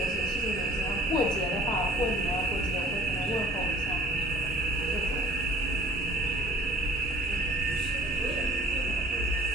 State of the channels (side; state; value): both; normal; correlation 0.50